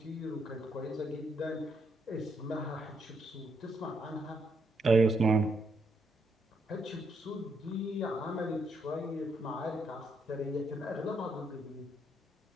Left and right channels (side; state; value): both; normal; correlation 0.75